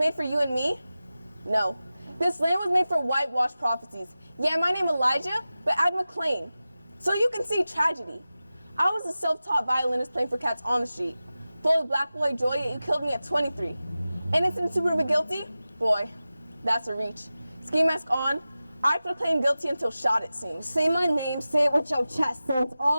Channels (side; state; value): both; inverted; correlation -0.95